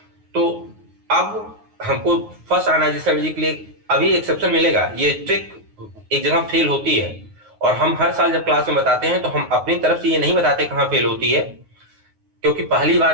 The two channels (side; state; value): left; late; 9.5 ms